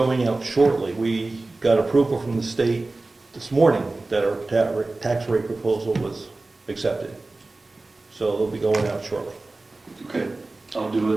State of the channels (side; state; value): left; quieter; 3.2 dB